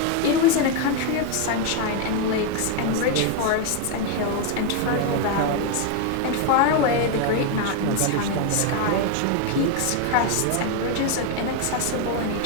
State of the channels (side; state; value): both; different; correlation 0.01